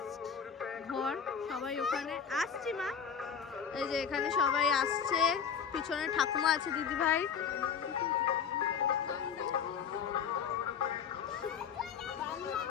ঘর। সবাই ওখানে আসছি মা, এই যে এখানে সবাই আসছে, পিছনে ঠাকুমা আছে, দিদি ভাই।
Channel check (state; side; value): quieter; right; 7.1 dB